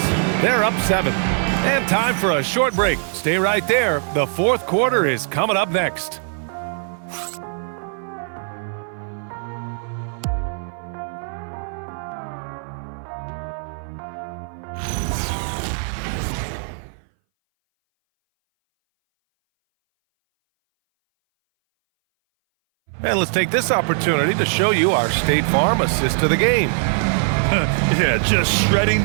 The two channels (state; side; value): silent; left; 60 dB below the other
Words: They're up 7. And time for a short break. Stay right there. The fourth quarter is coming up next. And let's take this opportunity to show you our State Farm assist to the game. Yeah, just shredding